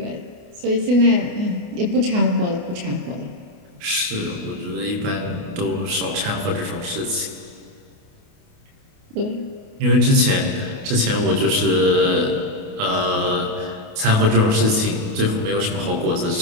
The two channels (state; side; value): late; left; 28 ms